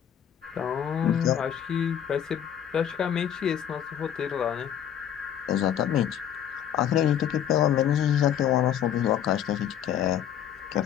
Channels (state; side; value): quieter; right; 9.7 dB